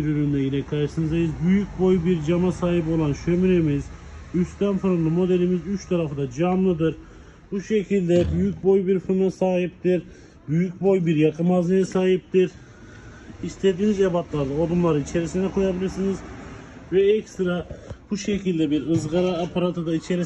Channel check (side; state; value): both; identical; correlation 1.00